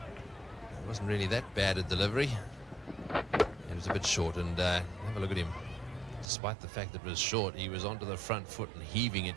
wasn't really that bad a delivery. It was a bit short, and have a look at him. Despite the fact that it was short, he was onto the front foot and heaving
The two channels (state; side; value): drops out; left; at 6.3 s